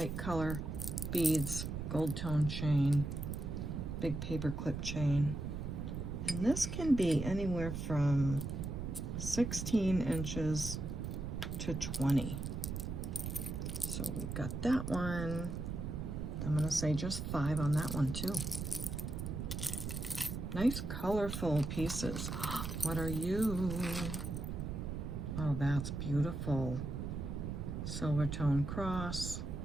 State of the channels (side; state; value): right; noise; rumble, 4 dB below the sound